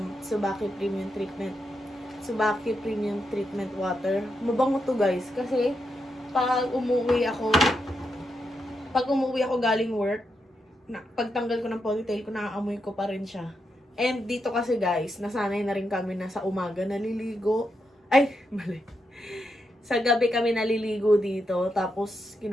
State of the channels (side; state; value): both; normal; correlation 0.84